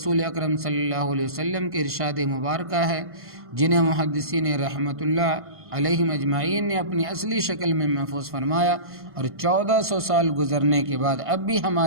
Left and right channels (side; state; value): left; late; 1.5 ms